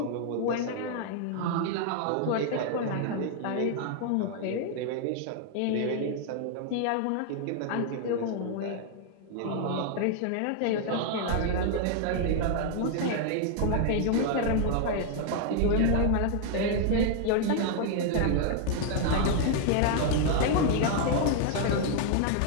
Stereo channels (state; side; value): different; both; correlation 0.00